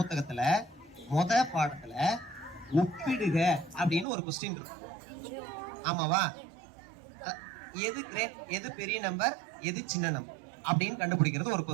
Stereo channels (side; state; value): left; drops out; at 4.0 s